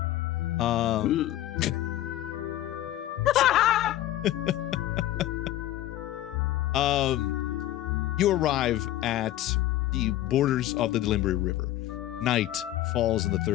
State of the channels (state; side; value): quieter; right; 14.1 dB